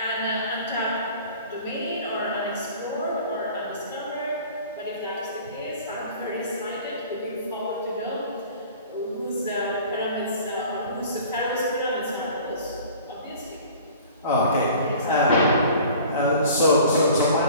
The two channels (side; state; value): both; inverted; correlation -0.45